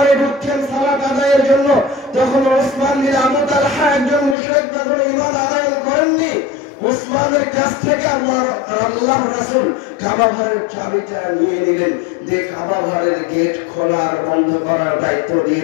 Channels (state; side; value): drops out; right; at 4.4 s